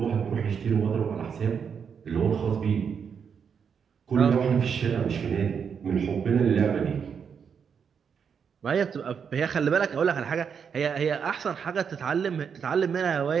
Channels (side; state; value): left; quieter; 6.8 dB